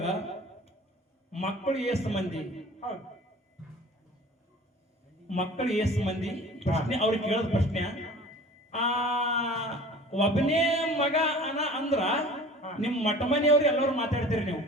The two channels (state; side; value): normal; both; correlation 0.44